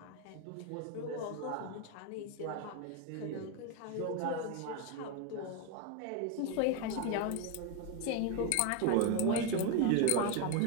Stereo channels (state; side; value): different; both; correlation 0.02